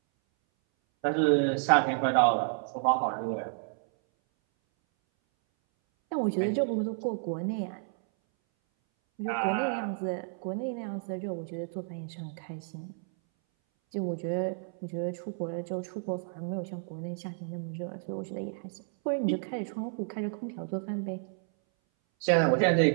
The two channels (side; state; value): left; silent; 57 dB below the other